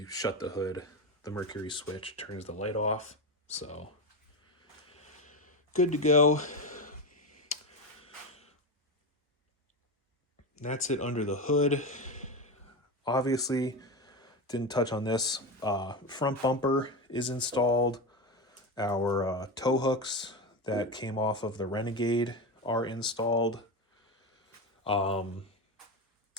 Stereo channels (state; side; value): normal; both; correlation 0.18